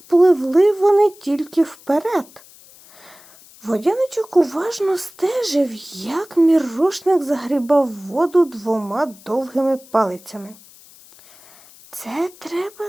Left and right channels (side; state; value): left; noise; hiss, 24 dB below the sound